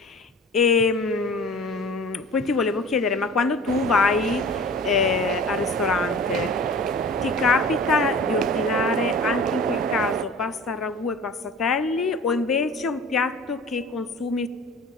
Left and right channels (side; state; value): both; normal; correlation 0.40